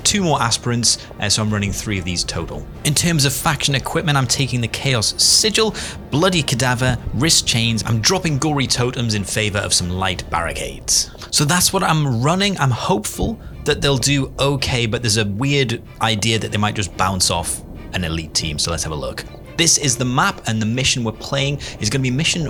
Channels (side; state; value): both; identical; correlation 1.00